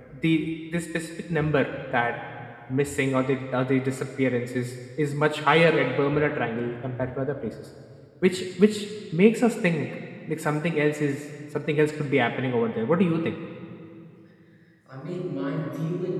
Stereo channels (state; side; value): identical; both; correlation 1.00